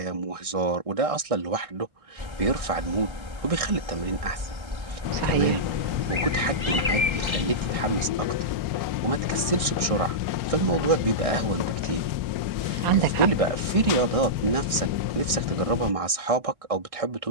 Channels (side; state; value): left; late; 1.6 ms